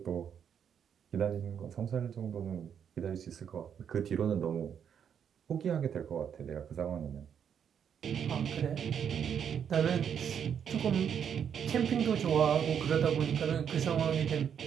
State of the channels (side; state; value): left; quieter; 8.1 dB